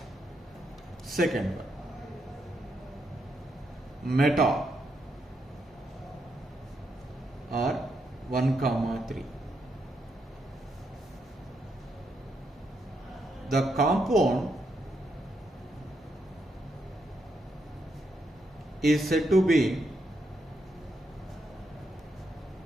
Second one, meta or 1, 3. The compound is said to be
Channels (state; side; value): normal; both; correlation 0.80